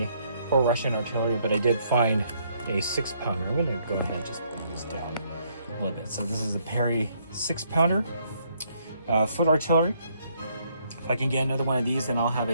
for Russian artillery, but I did find a 6-pounder. I'm gonna go ahead and just bring this down a little bit. So this is a Perry 6-pounder foot artillery. If I can get another one of these, then I'll have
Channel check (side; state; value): both; inverted; correlation -0.70